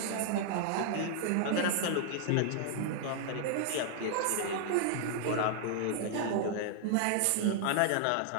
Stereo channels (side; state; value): both; different; correlation -0.01